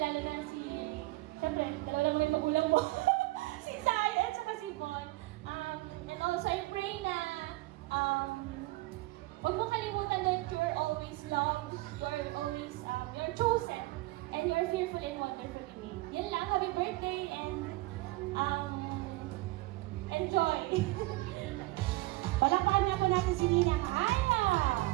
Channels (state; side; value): quieter; left; 20.3 dB